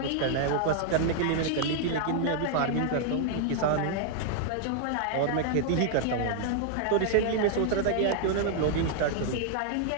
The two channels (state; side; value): different; both; correlation -0.01